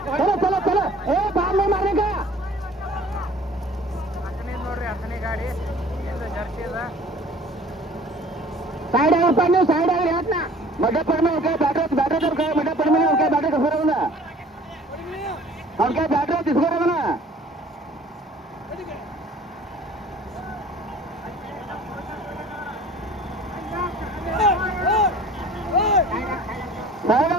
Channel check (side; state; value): both; normal; correlation 0.49